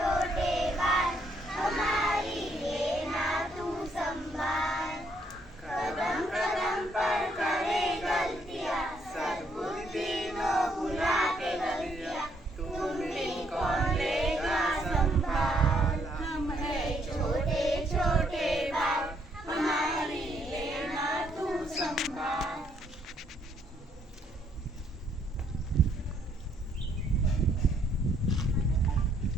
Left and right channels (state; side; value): normal; both; correlation 0.70